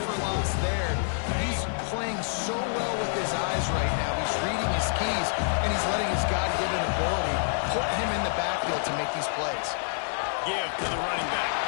for loss there. He's playing so well with his eyes right now. He's reading his keys, and he's letting his God-given ability put him in the backfield to make these plays. Give to the running back.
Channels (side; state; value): right; silent; digital silence